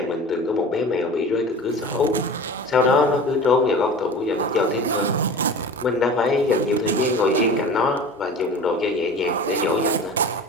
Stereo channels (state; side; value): normal; both; correlation 0.37